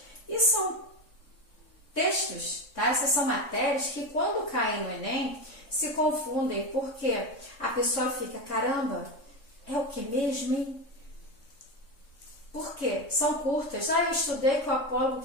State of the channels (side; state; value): right; late; 3.6 ms